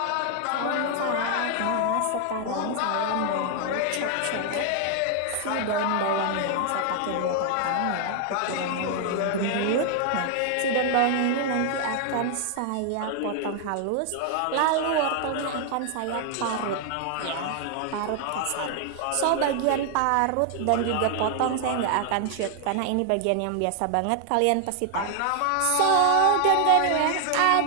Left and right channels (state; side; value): different; both; correlation 0.00